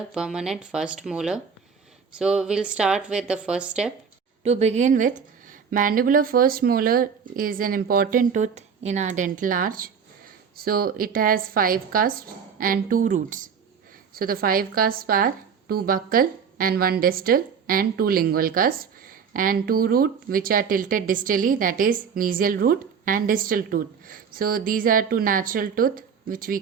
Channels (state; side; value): quieter; left; 6.6 dB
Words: permanent first molar. So we'll start with the first step. To begin with, mandibular first molar is an important tooth in our dental arch. So it has 5 cusps and 2 roots. So the 5 cusps are 2 buccal and 1 distal and 2 lingual cusps, and 2 root which are tilted distally, that is mesial root and distal tooth. So these are 2 natural tooth which we